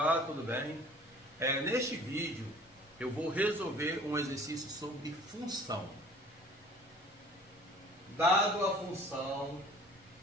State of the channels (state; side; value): normal; both; correlation 0.49